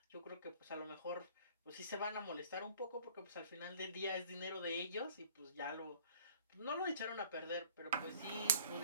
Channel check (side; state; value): both; inverted; correlation -0.52